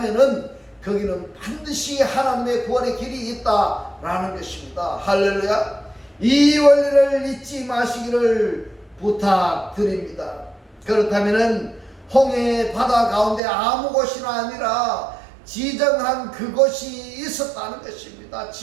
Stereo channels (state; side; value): drops out; left; at 13.4 s